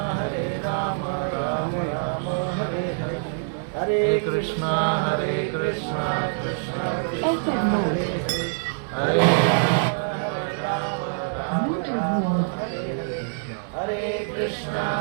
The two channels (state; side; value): silent; left; 56 dB below the other